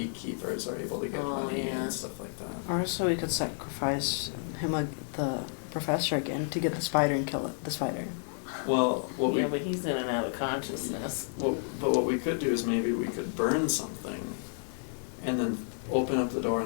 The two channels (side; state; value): right; silent; 57 dB below the other